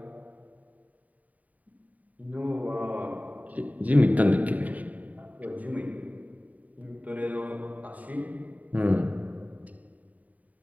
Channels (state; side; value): late; left; 0.072 ms